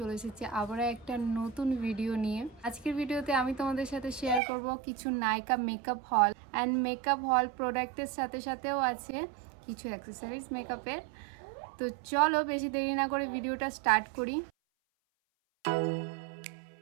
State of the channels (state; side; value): drops out; left; at 4.4 s